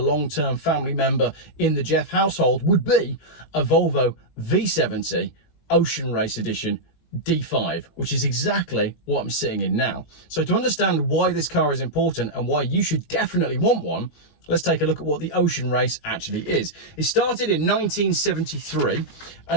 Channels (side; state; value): right; late; 19 ms